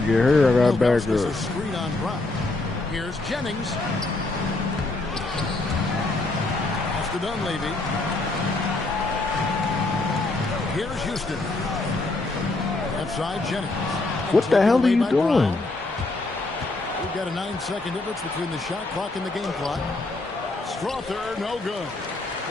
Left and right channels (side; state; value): right; quieter; 3.0 dB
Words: get hurt, I got back a up. screen on Brown. Here's Jennings. Pass to Dunleavy. Here's Houston. Left side, Jennings. What the hell are you doing? We've got a 9-second difference between the shot clock and the game clock. Strother, no good.